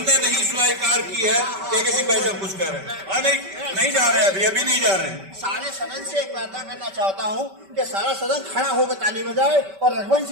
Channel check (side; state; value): left; late; 5.2 ms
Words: नहीं स्वीकार की है। किसी भाई साहब कुछ कह रहे हैं? नहीं जा रहे हैं, अभी नहीं जा रहे हैं। सारे सदन से एक वार्ता करना चाहता हूं कि सारा सदन खड़ा होकर ताली बजाए और